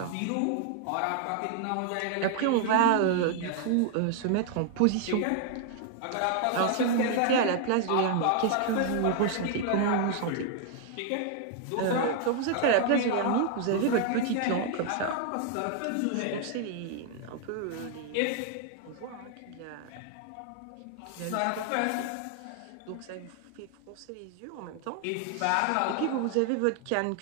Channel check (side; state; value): both; different; correlation 0.00